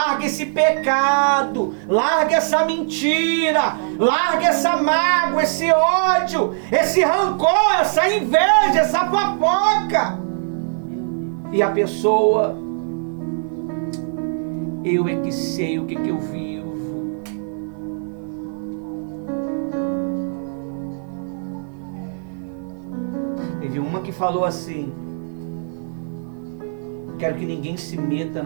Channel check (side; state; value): left; silent; 60 dB below the other